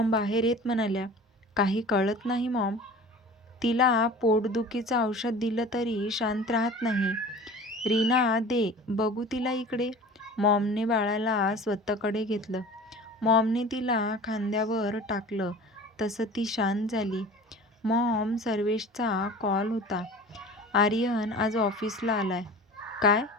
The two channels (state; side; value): normal; both; correlation 0.39